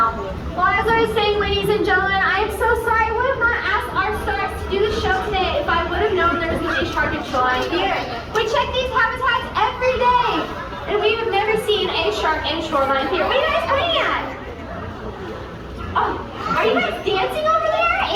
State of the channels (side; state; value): both; identical; correlation 1.00